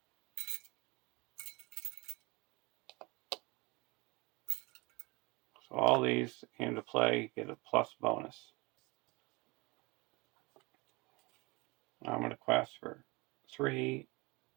So all these came to play, get a plus bonus. Now I'm going to quest for 3,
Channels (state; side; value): quieter; left; 25.6 dB